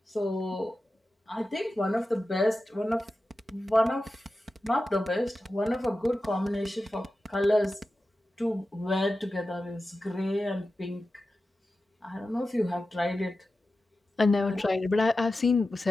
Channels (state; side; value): normal; both; correlation 0.93